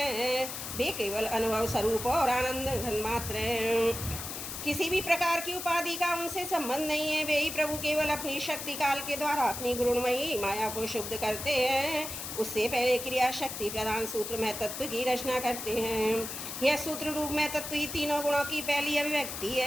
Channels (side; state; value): left; noise; hiss, 7 dB below the sound